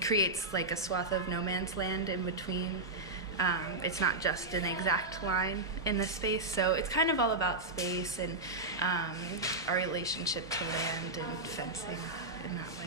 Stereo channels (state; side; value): quieter; left; 3.0 dB